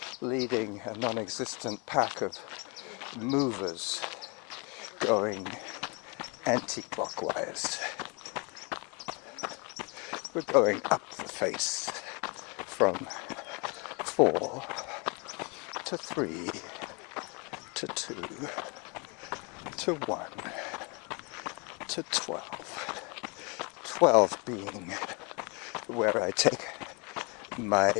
leading a non-existent pack of movers going anti-clockwise. We're going up the face from 4 to 3 to 2 to 1 to 12. 12 being where I take my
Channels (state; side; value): quieter; right; 32.0 dB